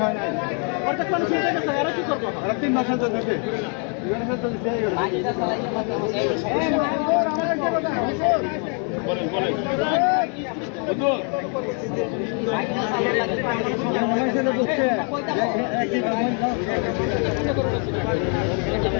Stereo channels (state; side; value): quieter; right; 39.6 dB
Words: হয় না অর্ধেক মানুষ উঠে গেছে এরা কি করবো 3 মাস হচ্ছে